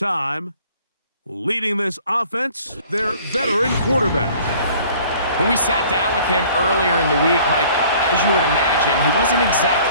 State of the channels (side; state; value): both; inverted; correlation -0.52